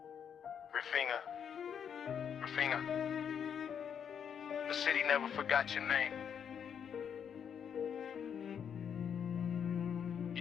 Raphinha, the city never forgot your name.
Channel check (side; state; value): right; quieter; 7.9 dB